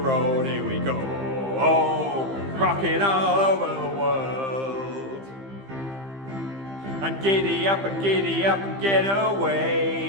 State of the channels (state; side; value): late; left; 15 ms